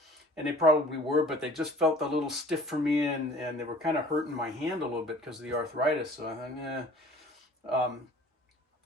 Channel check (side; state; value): both; normal; correlation 0.49